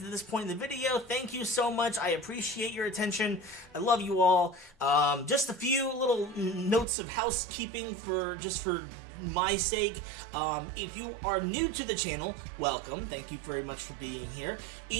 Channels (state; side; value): drops out; left; at 6.9 s